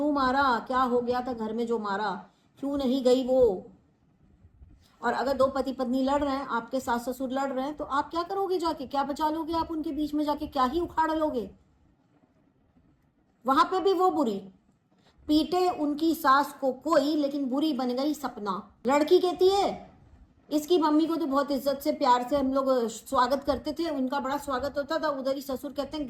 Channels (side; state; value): both; identical; correlation 1.00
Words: मारा, क्या हो गया था घर में जो मारा, क्यों नहीं गई वो? और अगर 2 पति पत्नी लड़ रहे हैं, आपके सास ससुर लड़ रहे हैं, तो आप क्या करोगे जाके? क्या बचा लोगे आप उनके बीच में जाके? क्या ही उखाड़ लोगे? वहां पे भी वो बुरी, पीटे उनकी सास को कोई, लेकिन बुरी बन गई सपना। लड़की कहती है इसकी मम्मी को तो बहुत इज्जत से प्यार से हम लोग स्वागत करते थे, उनका बड़ा स्वागत होता था, उधर ही ससुर कहते हैं